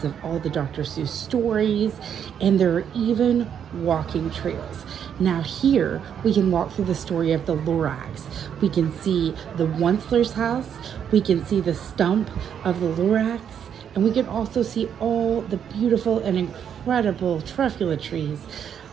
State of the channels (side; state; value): left; quieter; 8.5 dB